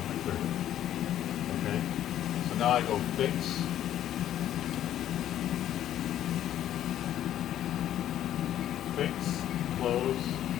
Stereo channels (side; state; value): right; quieter; 11.6 dB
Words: cleared it. Okay. So now I go fix. Fix, close,